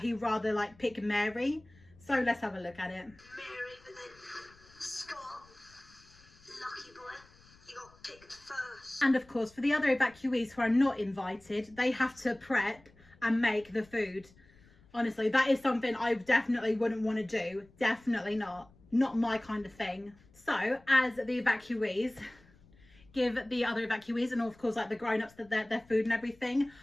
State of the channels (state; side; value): noise; left; rumble, 27 dB below the sound